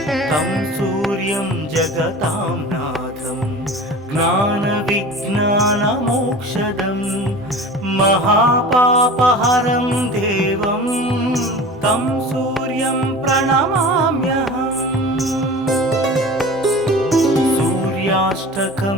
तं सूर्यं जगतां नाथं ज्ञानविज्ञानमोक्षदं महापापहरं देवं तं सूर्यं प्रणमाम्यहम्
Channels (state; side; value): normal; both; correlation 0.37